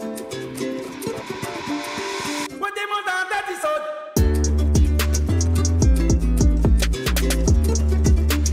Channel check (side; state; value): both; identical; correlation 1.00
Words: moi demande en date ils sautent.